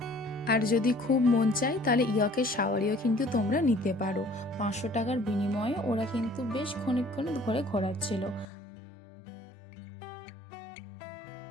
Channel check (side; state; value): right; drops out; at 8.5 s